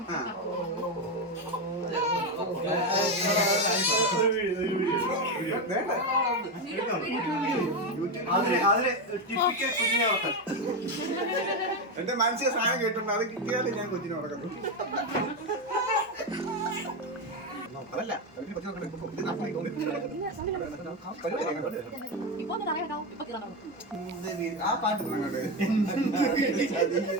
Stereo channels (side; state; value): both; normal; correlation 0.11